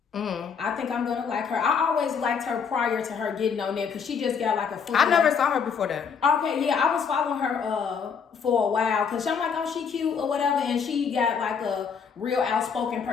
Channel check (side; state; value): right; quieter; 6.4 dB